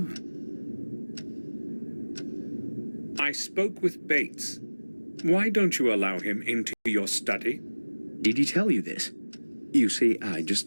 I spoke with Bates. Why don't you allow him into your study? Did he tell you this? You see, I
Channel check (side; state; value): both; inverted; correlation -1.00